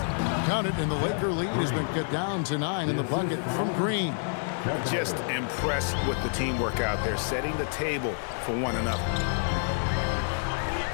Count it, and the Laker lead has been cut down to 9 in the bucket from Green. Just impressed with the teamwork out there, setting the table for one another.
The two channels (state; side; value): silent; right; digital silence